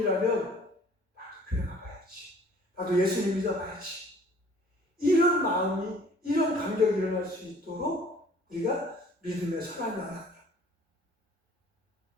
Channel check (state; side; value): normal; both; correlation 0.54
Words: 나도 교회 가봐야지, 나도 예수님 믿어봐야지, 이런 마음이, 이런 감격이 일어날 수 있도록 우리가 믿음의 선한 영향력.